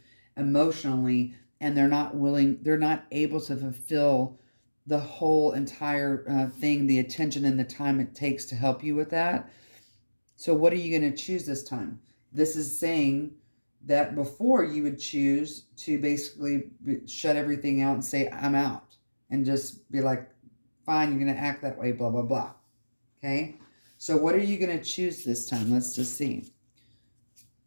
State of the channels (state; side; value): inverted; both; correlation -1.00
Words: emotionally, and they're not able to fulfill the whole entire thing, the attention and the time it takes to help you with that. So what are you going to choose this time? This is saying that before you would choose to basically shut everything out and say, I'm out, and just be like, fine, you're going to act that way, blah, blah, blah. Okay. So what are you going to choose this time? Let's just see.